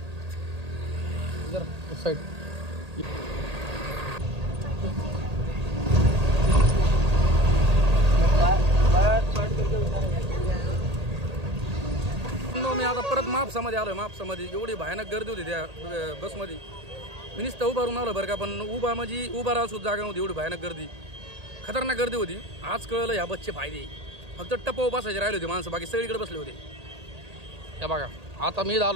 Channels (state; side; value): late; left; 1.8 ms